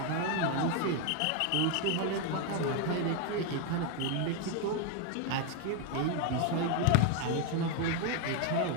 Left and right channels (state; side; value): different; both; correlation 0.01